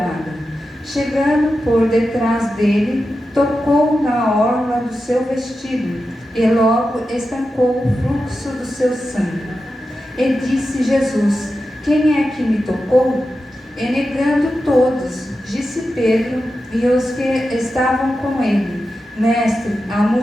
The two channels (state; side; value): normal; both; correlation 0.91